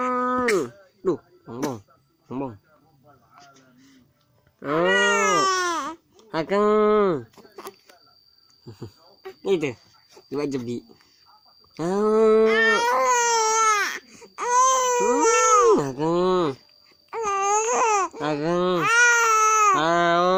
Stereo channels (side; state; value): both; identical; correlation 1.00